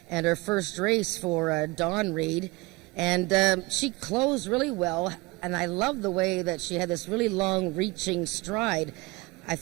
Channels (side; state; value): left; quieter; 23.5 dB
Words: and her first race for Dawn Reed. And she closed really well. And I love the way that she had this really long reaching stride. I